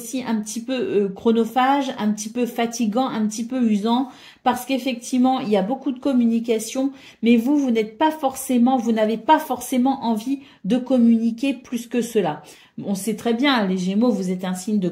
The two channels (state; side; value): identical; both; correlation 1.00